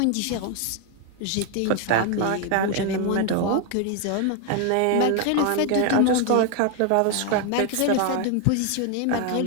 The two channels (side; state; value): both; different; correlation 0.01